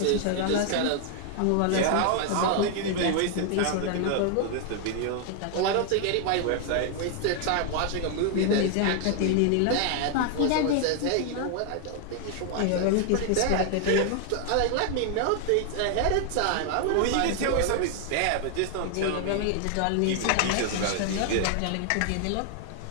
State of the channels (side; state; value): both; different; correlation 0.00